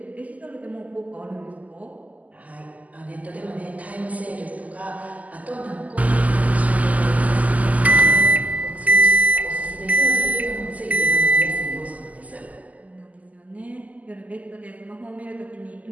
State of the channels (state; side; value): late; left; 0.076 ms